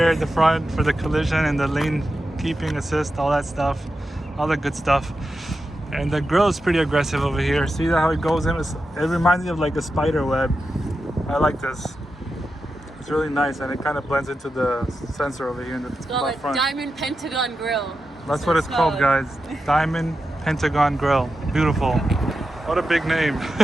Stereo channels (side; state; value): both; normal; correlation 0.90